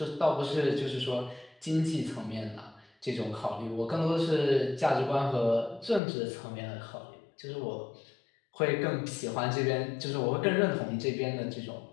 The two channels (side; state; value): right; drops out; at 6.0 s